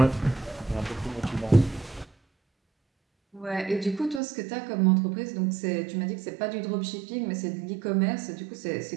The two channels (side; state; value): left; drops out; at 4.2 s